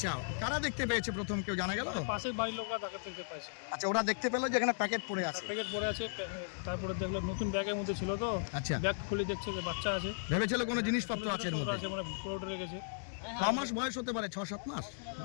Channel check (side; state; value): right; silent; digital silence